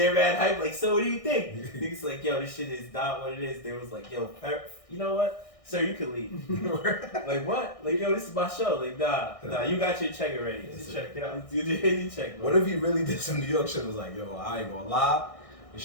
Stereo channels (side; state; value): right; late; 1.6 ms